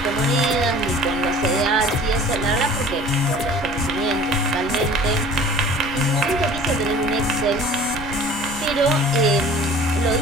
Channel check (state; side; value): noise; right; rumble, 14 dB below the sound